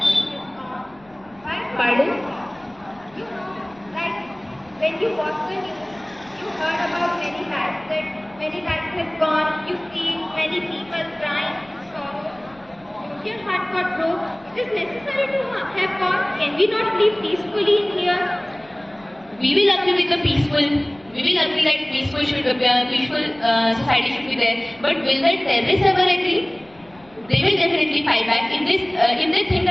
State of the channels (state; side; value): noise; left; rumble, 29 dB below the sound